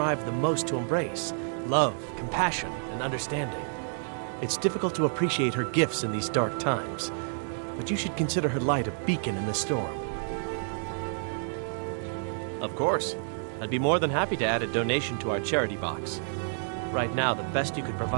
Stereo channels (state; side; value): silent; left; digital silence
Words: the most to embrace. love, compassion, and understanding. It's difficult to appreciate her gifts in these dark times, but you should consider her light a beacon in the storm. Of course. I'd be more than happy to add a donation to our charity box. Right now, the best you could